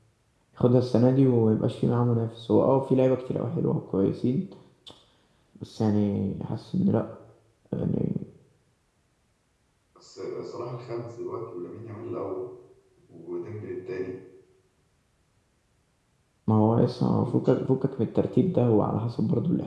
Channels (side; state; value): both; identical; correlation 1.00